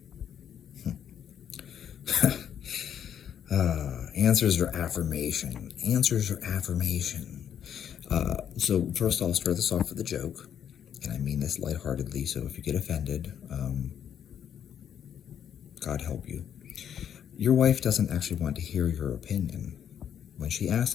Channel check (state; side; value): quieter; right; 9.1 dB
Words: Answers or affirmation? Answers or affirmation? So first I'll start this off with a joke, and I mean this lightheartedly, so if you get offended, God help you. Your wife doesn't actually want to hear your opinion. When she